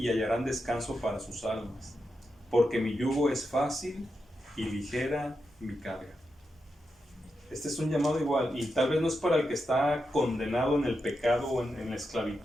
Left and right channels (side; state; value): both; normal; correlation 0.87